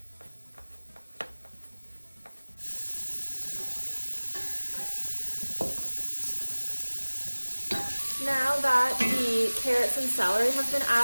Now that the carrots and celery have been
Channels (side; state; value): both; inverted; correlation -1.00